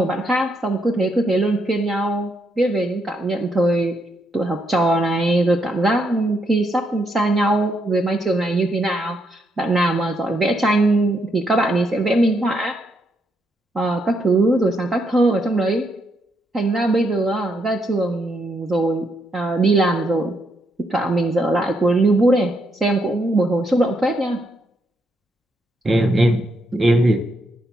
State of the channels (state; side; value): normal; both; correlation 0.77